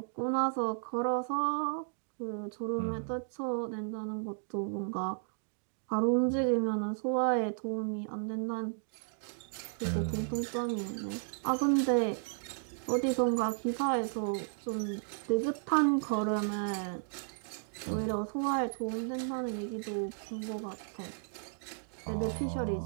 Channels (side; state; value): left; silent; digital silence